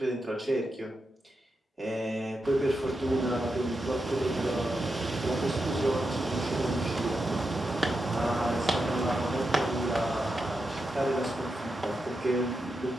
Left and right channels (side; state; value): both; normal; correlation 0.87